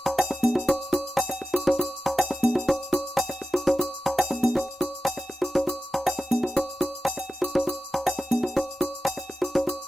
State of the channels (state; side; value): normal; both; correlation 0.93